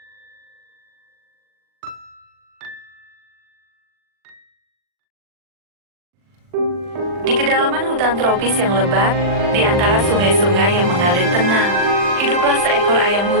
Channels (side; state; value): left; late; 40 ms